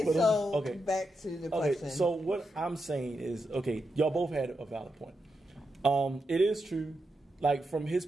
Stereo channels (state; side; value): normal; both; correlation 0.86